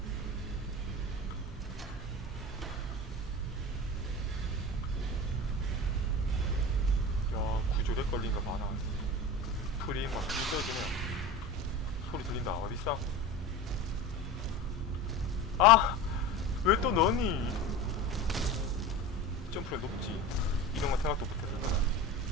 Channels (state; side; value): normal; both; correlation 0.30